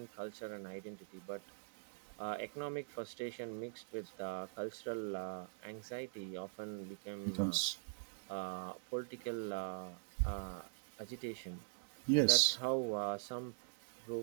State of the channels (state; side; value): silent; left; digital silence